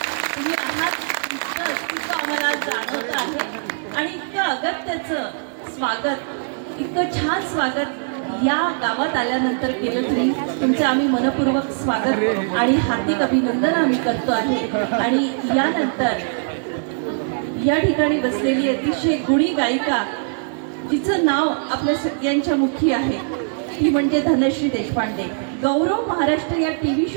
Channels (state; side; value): silent; left; digital silence